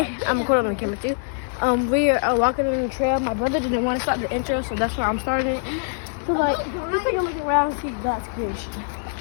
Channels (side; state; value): right; silent; 60 dB below the other